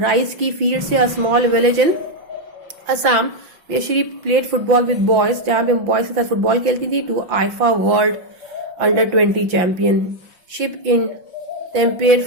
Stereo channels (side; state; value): left; late; 5.8 ms